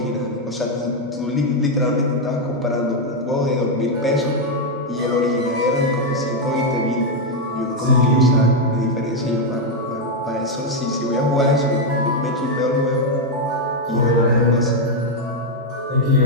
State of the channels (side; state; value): both; normal; correlation 0.02